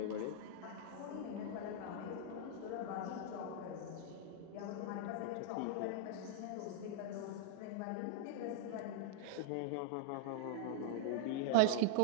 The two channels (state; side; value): different; both; correlation 0.00